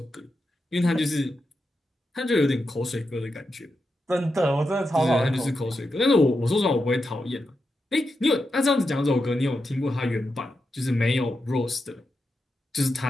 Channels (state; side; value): normal; both; correlation 0.87